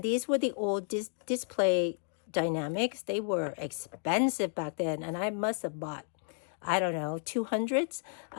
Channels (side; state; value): right; silent; 56 dB below the other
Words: these were the old display dynamics. They were expensive back then, and I must have bought, I don't know, 200s,